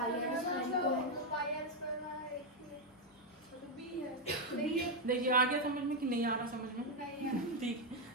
आर स्क्वायर को है। पाई आर स्क्वायर में एक तो बी है। देखिए आ गया समझ में कि नहीं आ रहा समझ में? नहीं है। ठीक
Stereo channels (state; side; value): normal; both; correlation 0.02